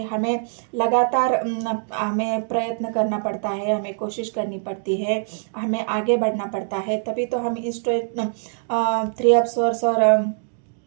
हमें लगातार हमें प्रयत्न करना पड़ता है, हमें कोशिश करनी पड़ती है, हमें आगे बढ़ना पड़ता है, तभी तो हम इस 3 ऑफ सोर्स और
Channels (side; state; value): left; silent; 60 dB below the other